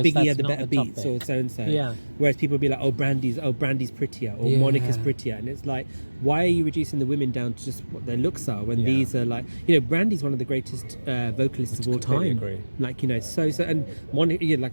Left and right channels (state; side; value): inverted; both; correlation -1.00